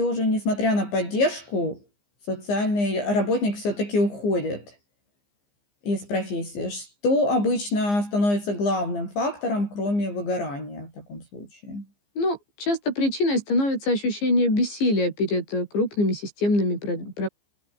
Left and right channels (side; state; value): right; late; 15 ms